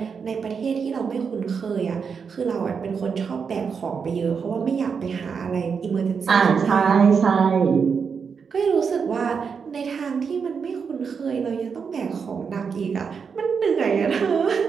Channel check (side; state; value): left; quieter; 6.0 dB